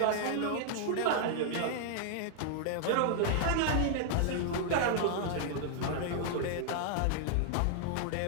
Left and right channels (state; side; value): different; both; correlation 0.00